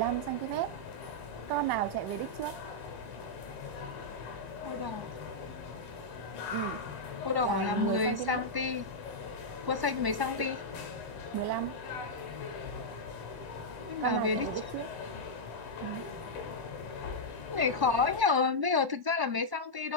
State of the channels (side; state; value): left; late; 1.1 ms